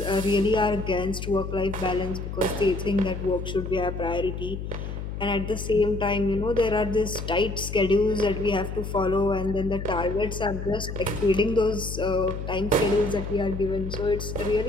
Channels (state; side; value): noise; left; hum, 6 dB below the sound